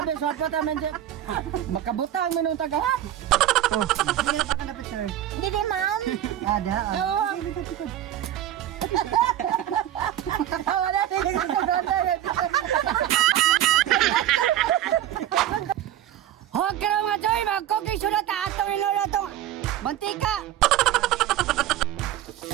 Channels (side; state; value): left; quieter; 12.3 dB